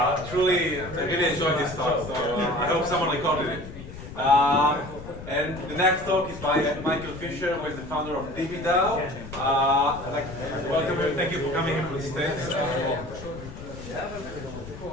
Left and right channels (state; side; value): noise; left; rumble, 12 dB below the sound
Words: Truly, I really enjoyed this talk, so I hope someone recorded it. And the next talk is by Michael Fisher, who is the founder of DeSci. Welcome you, thank you for coming into the stage.